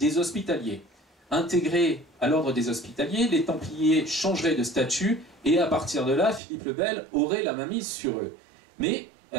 Hospitaliers. Intégrés à l'ordre des Hospitaliers, les Templiers changeraient de statut et à partir de là, Philippe le Bel aurait la mainmise sur eux. Mais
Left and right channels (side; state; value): left; drops out; at 6.4 s